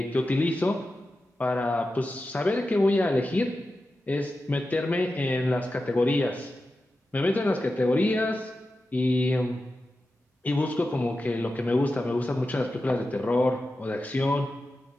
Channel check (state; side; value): normal; both; correlation 0.92